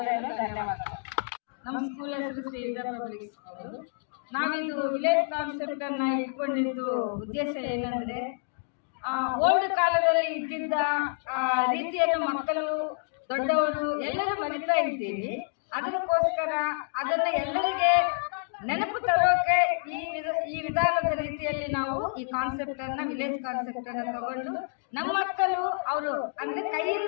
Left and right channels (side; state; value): right; silent; digital silence